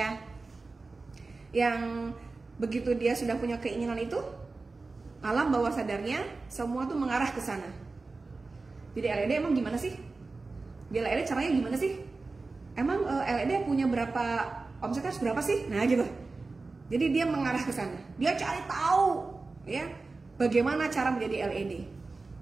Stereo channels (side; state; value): left; quieter; 3.7 dB